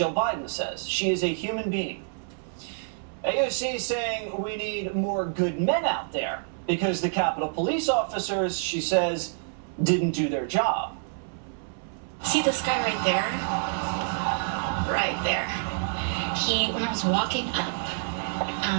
Biden says. She is a human being. AOC is saying we need more good men out there because the Capitol Police officers, she says, didn't do their job. See this guy right there? Right there. When I was walking up,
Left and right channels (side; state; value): left; silent; 60 dB below the other